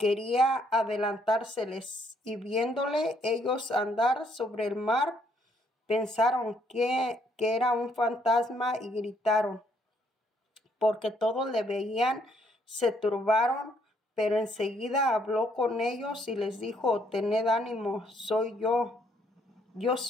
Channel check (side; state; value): both; normal; correlation 0.69